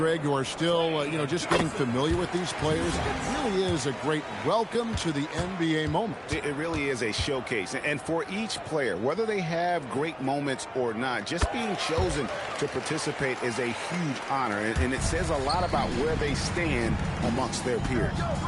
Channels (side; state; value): both; identical; correlation 1.00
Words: who are still, just getting familiar with these players, it really is a great welcome to the NBA moment. It really is a showcase. And for each player, whether they have great moments or not, just being chosen to participate is a huge honor. And it says a lot about where they stand amongst their peers.